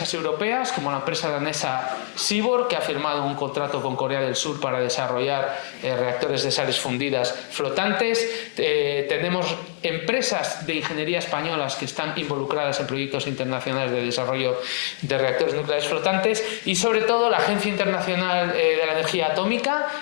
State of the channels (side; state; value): right; silent; digital silence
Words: europeas, como la empresa danesa Seaborg, que ha firmado un contrato con Corea del Sur para desarrollar reactores de sales fundidas flotantes. Tenemos empresas de ingeniería españolas que están involucradas en proyectos internacionales de desarrollo de reactores nucleares flotantes, y sobre todo la Agencia Internacional de la Energía Atómica,